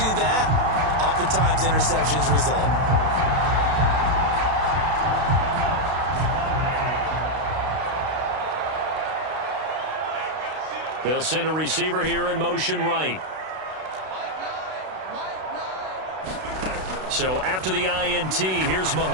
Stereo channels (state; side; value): late; left; 32 ms